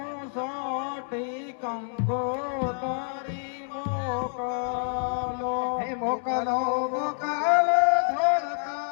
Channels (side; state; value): right; silent; 60 dB below the other